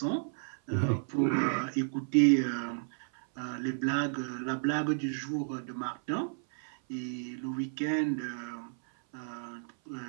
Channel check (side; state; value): left; silent; 56 dB below the other